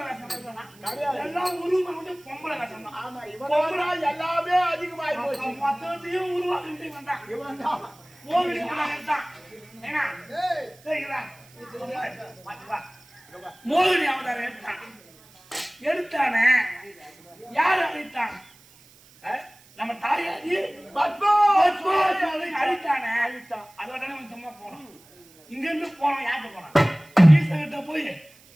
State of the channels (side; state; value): right; noise; hiss, 26 dB below the sound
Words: வேஷம் எல்லாம் உருவம் மட்டும் பொம்பளை வேஷம் தான். ஆமா இவன் எல்லாமே அதிகமாகி போச்சு. மொத்தத்தையும் உருவாக்கிட்டு வந்தான். இவன் தான் ஏன்னா மோகினி அவதாரம் எடுத்தான். எடுத்தானே யார் அழைத்தான்? நம்ம தாயாரி அழித்தானே. அழித்தான். அதோட சும்மா போனோம். இங்க இருந்து போனோம். யார்கிட்ட போனான்? ஈஸ்வரகிட்ட போய்